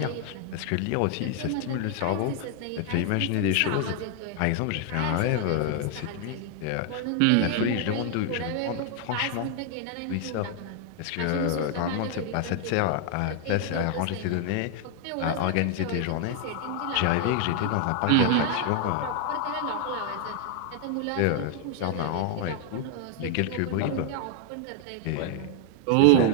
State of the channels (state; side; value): different; both; correlation 0.00